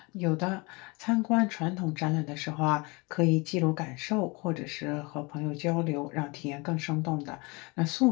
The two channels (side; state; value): right; quieter; 27.3 dB